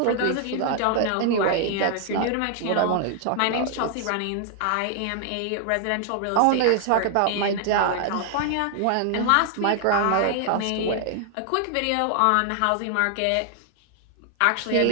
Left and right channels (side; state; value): both; different; correlation 0.00